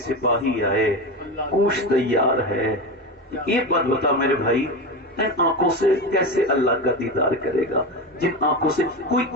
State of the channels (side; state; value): both; normal; correlation 0.21